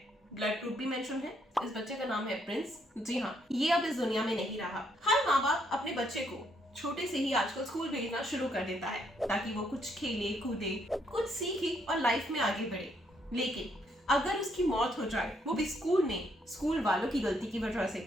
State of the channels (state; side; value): normal; both; correlation 0.73